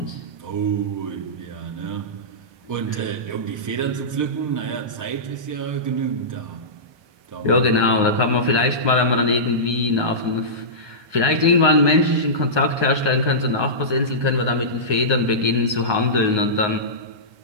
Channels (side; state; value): left; late; 1.2 ms